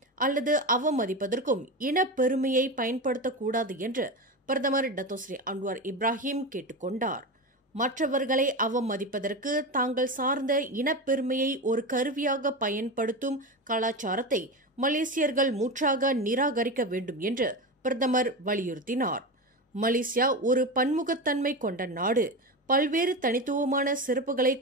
அல்லது அவமதிப்பதற்கும் இனப்பெருமையை பயன்படுத்தக்கூடாது என்று பிரதமர் டத்தோஸ்ரீ அன்வார் இப்ராஹிம் கேட்டுக் கொண்டார். மற்றவர்களை அவமதிப்பதற்கு தாங்கள் சார்ந்த இனப்பெருமையை ஒரு கருவியாக பயன்படுத்தும் கலாச்சாரத்தை மலேசியர்கள் முற்றாக நிராகரிக்க வேண்டும் என்று பிரதமர் வலியுறுத்தினார். மலேசியா ஒரு பன்முகத்தன்மை கொண்ட நாடு. பல்வேறு தனித்துவமான சிறப்புகளை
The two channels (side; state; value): both; normal; correlation 0.21